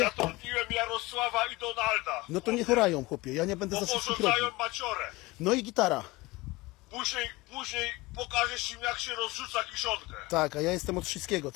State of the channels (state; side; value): quieter; right; 21.7 dB